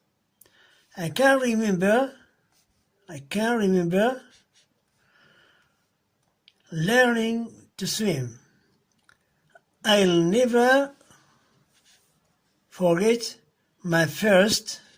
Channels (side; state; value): both; identical; correlation 1.00